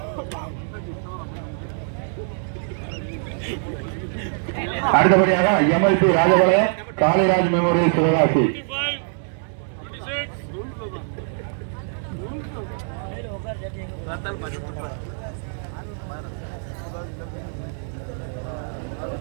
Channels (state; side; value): silent; left; 63 dB below the other